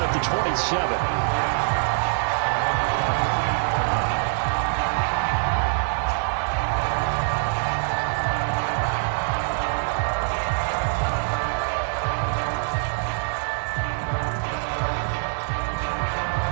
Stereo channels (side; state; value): left; silent; digital silence